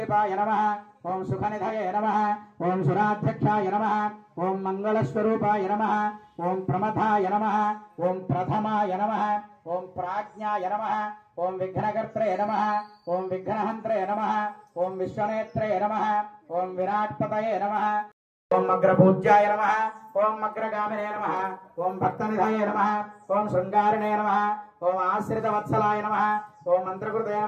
నమః ఓం సుఖనిధయే నమః ఓం సురాధ్యక్షాయ నమః ఓం మంగళస్వరూపాయ నమః ఓం ప్రమథాయ నమః ఓం ప్రథమాయ నమః ఓం ప్రాజ్ఞాయ నమః ఓం విఘ్నకర్త్రే నమః ఓం విఘ్నహంత్రే నమః ఓం విశ్వనేత్రే నమః ఓం విరాట్పతయే నమః ఓం అగ్రపూజ్యాయ నమః ఓం అగ్రగామినే నమః ఓం భక్తనిధయే నమః ఓం శృంగారిణే నమః ఓం ఆశ్రితవత్సలాయ నమః ఓం మంత్రకృతే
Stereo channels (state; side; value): identical; both; correlation 1.00